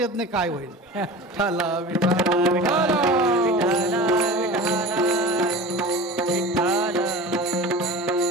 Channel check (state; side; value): normal; both; correlation 0.34